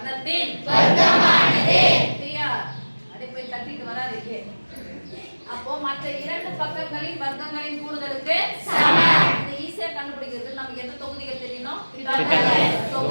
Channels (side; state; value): both; inverted; correlation -1.00